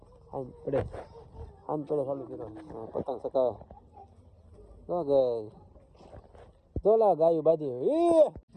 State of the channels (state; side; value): identical; both; correlation 1.00